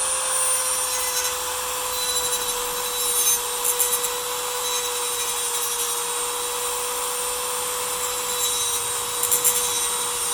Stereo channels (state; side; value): identical; both; correlation 1.00